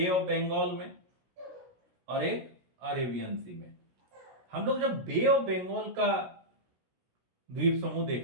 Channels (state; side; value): late; left; 16 ms